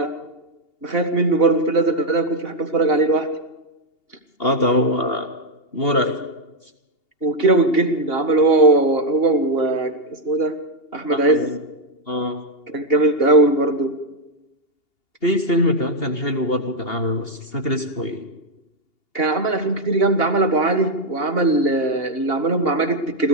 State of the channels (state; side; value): late; right; 2.8 ms